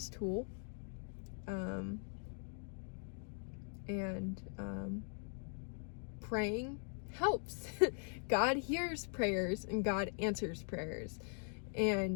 tool, and praying helps. God hears prayers, and God answers prayers,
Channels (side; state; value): right; silent; 50 dB below the other